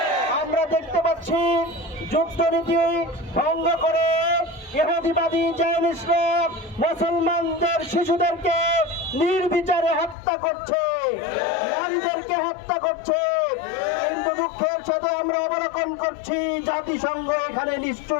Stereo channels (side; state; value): right; drops out; at 10.2 s